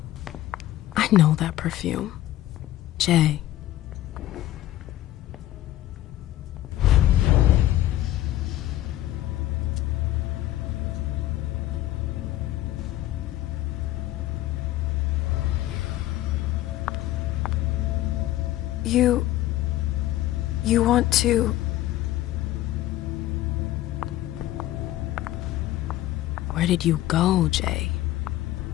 I know that perfume. Jay, You want to... Where did you go, Jay?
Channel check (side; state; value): right; quieter; 14.5 dB